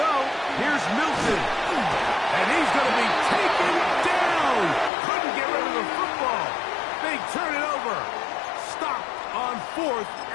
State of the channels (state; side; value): drops out; right; at 4.9 s